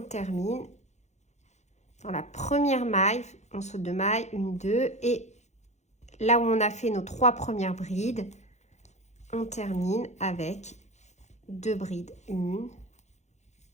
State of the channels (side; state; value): right; late; 0.33 ms